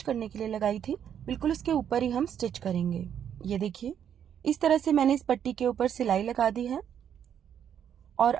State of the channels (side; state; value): left; quieter; 9.0 dB